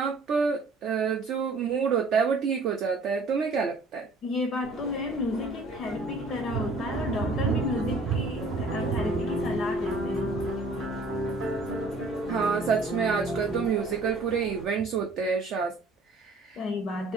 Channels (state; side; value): quieter; left; 3.0 dB